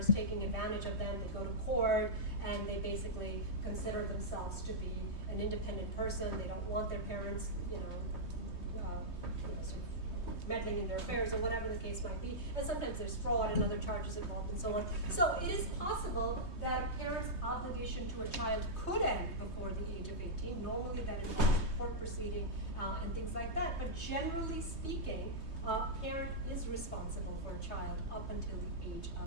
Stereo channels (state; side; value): late; right; 3.2 ms